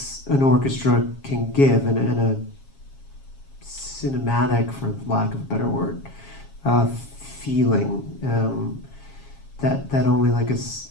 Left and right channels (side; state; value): right; late; 7.3 ms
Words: orchestra can give, and a cinematic, for lack of a better word, feeling that only like